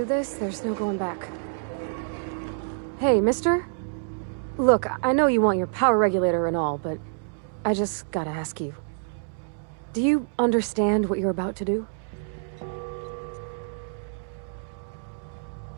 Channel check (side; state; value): left; silent; digital silence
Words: this, there's no going back. Hey, mister? Look, I know you want your power regulator and all, but I just gotta ask you. Do you understand what you're about to do?